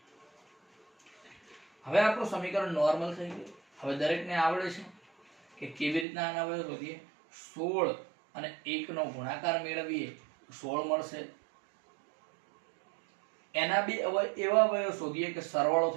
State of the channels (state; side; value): drops out; left; at 6.1 s